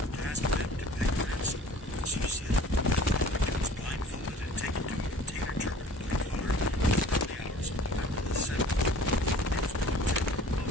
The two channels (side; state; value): both; normal; correlation 0.47